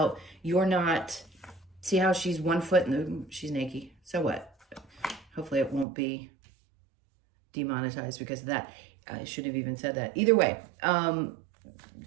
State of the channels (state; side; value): drops out; left; at 5.9 s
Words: you're not, see how she's one foot in the, she's naked. So what? Hopefully it won't be demonetized because of that. I shouldn't have even said that. Either way, 1